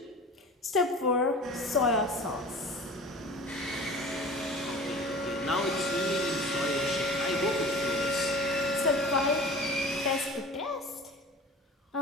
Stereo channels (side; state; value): both; normal; correlation 0.40